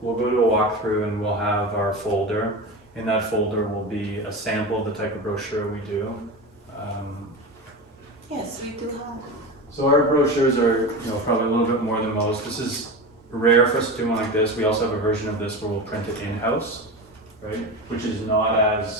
we'll go to a walkthrough and we'll have our folder. In that folder will be a sample of the type of brochure we do. Yes, we do have. So our brochures are, probably a little bit more than most. This is rare for us to do one like this. We also have a version of this where we'll print it in-house, right? Which is not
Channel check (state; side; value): normal; both; correlation 0.25